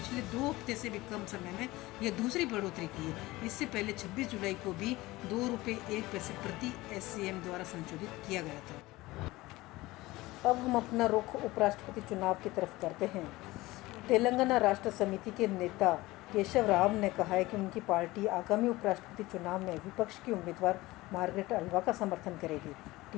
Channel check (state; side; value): quieter; right; 19.5 dB